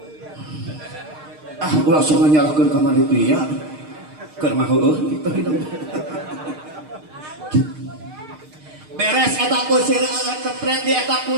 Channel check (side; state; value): left; late; 6.5 ms